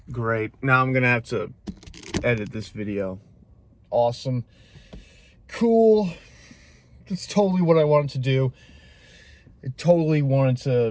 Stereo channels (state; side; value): identical; both; correlation 1.00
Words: Great. Now I'm gonna have to edit this video. Awesome. Cool. That's totally what I wanted to do. I totally wanted